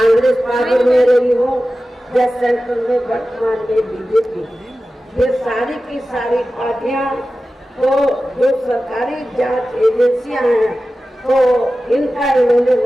पावर में रही हो या सेंट्रल में वर्तमान में बीजेपी, ये सारी की सारी पार्टियां तो जो सरकारी जांच एजेंसियां हैं तो इनका इन्होंने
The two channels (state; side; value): normal; both; correlation 0.95